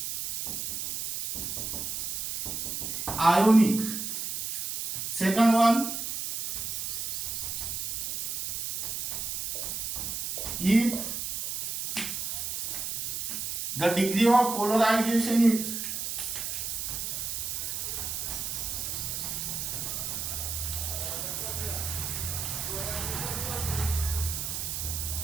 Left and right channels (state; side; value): noise; right; hiss, 3 dB below the sound